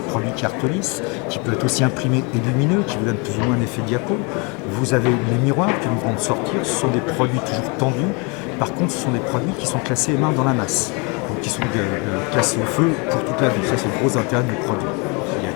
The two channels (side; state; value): right; quieter; 31.3 dB